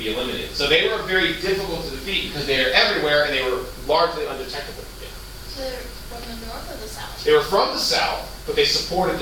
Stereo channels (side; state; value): both; identical; correlation 1.00